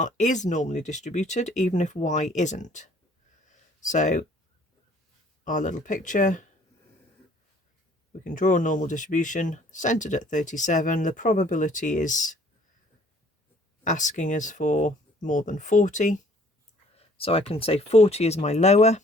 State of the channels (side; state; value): both; normal; correlation 0.57